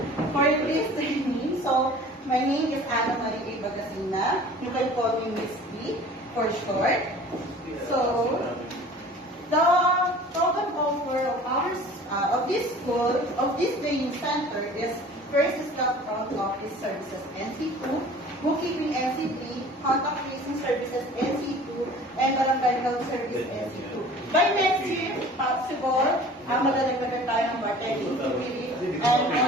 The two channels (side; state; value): both; normal; correlation 0.45